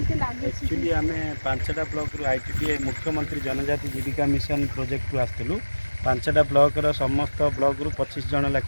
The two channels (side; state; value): both; inverted; correlation -1.00